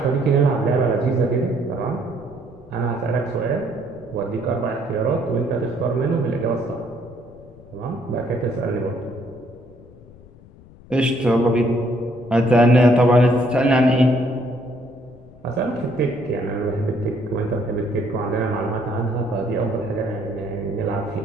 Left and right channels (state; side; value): noise; left; rumble, 22 dB below the sound